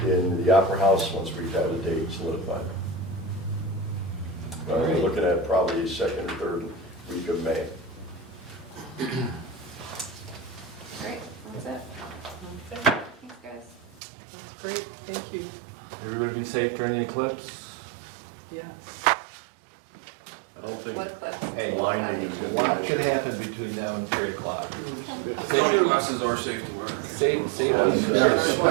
in the Opera House once we've had a date solidified. We're looking at probably second or third week of May. Great, that's it. Okay, Thanks, guys. that's great, thank you. Everybody be safe during the eclipse. Yes. I don't think What clips? blinding is going to be an What could issue. happen between now and 3 o'clock? Sony glasses are safe to wear. Safe. Our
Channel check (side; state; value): left; drops out; at 14.0 s